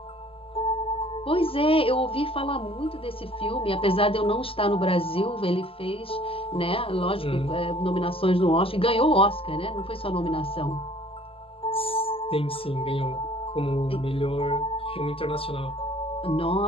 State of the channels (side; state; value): right; late; 0.27 ms